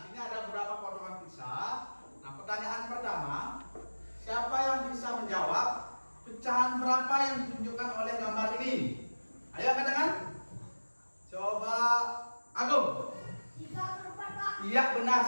sini ada beberapa potongan pizza. Nah, pertanyaan pertama, siapa yang bisa menjawab pecahan berapa yang ditunjukkan oleh gambar ini? Ayo katakan. Coba Agung. 3/4, Pak. Iya, benar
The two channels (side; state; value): both; inverted; correlation -1.00